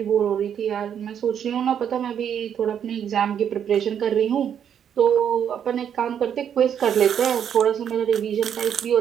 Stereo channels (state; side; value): quieter; left; 8.7 dB